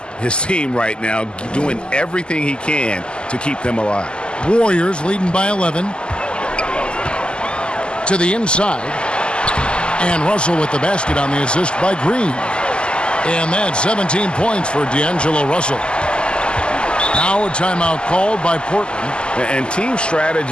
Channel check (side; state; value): right; late; 0.050 ms